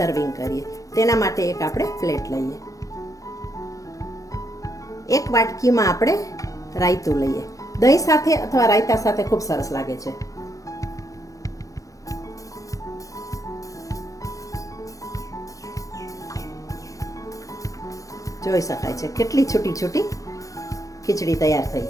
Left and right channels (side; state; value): right; late; 0.16 ms